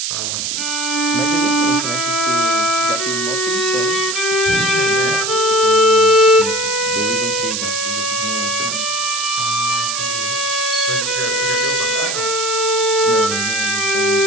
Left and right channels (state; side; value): noise; right; hiss, 1 dB below the sound